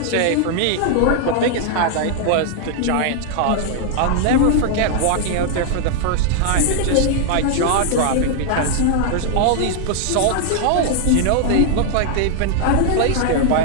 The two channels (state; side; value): different; both; correlation 0.00